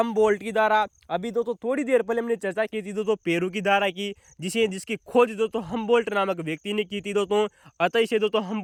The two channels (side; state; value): both; identical; correlation 1.00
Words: की धारा। अभी दोस्तों थोड़ी देर पहले हमने चर्चा की थी दोस्तों पेरू की धारा की, जिसकी खोज दोस्तों हमबोल्ट नामक व्यक्ति ने की थी दोस्तों। अतः इसे दोस्तों